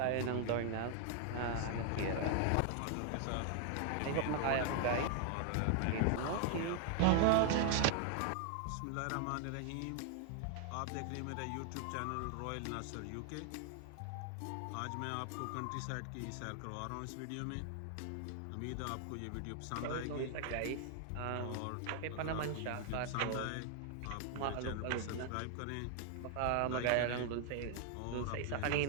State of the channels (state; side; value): different; both; correlation 0.00